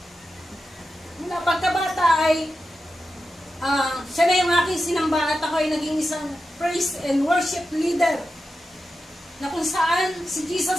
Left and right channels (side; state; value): both; normal; correlation 0.90